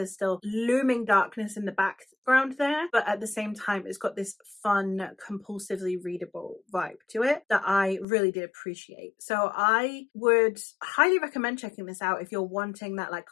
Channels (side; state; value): right; drops out; at 8.1 s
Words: still looming darkness in the background there, but at the same time it's got this fun, compulsively readable vibe to it that I really did appreciate. So I would highly recommend checking this out if you're wanting that like